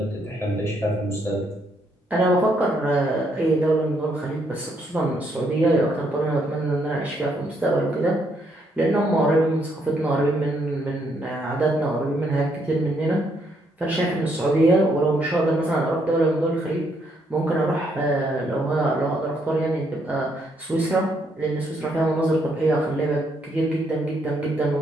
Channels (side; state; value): both; normal; correlation 0.73